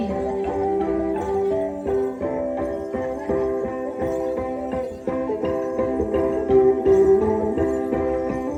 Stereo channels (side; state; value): both; identical; correlation 1.00